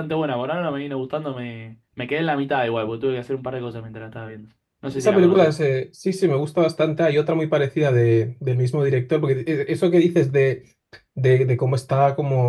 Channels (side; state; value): both; identical; correlation 1.00